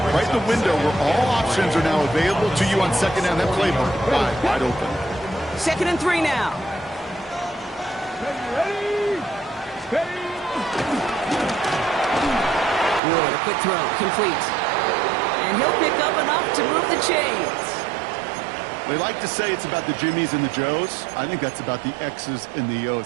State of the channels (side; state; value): left; drops out; at 13.0 s